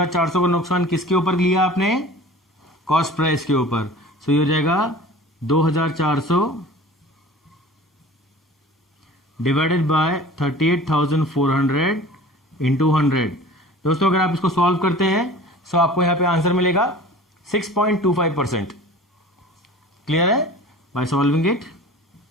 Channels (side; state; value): both; normal; correlation 0.42